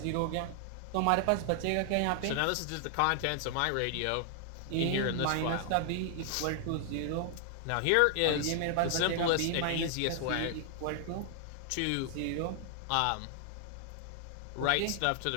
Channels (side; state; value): both; different; correlation 0.00